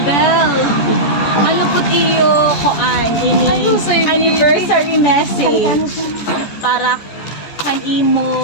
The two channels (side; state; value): right; late; 14 ms